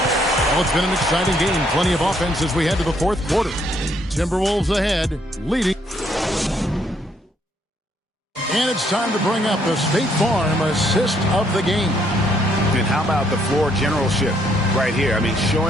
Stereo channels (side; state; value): both; normal; correlation 0.70